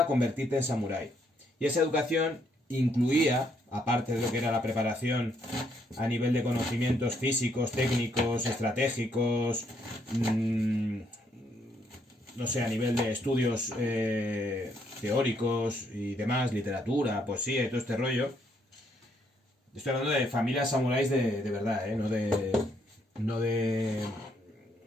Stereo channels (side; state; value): both; normal; correlation 0.72